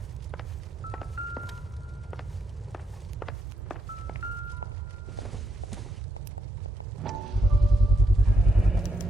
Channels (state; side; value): normal; both; correlation 0.81